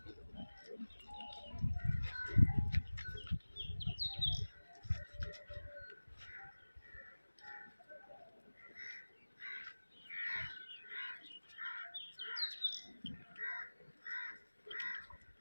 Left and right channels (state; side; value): inverted; both; correlation -1.00